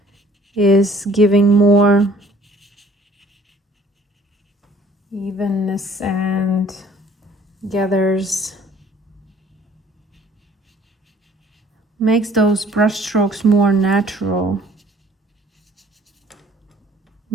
is giving more evenness and makes those brush strokes more natural.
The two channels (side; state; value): both; normal; correlation 0.56